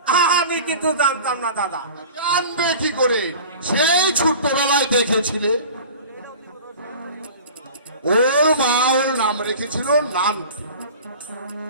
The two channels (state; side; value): inverted; both; correlation -0.40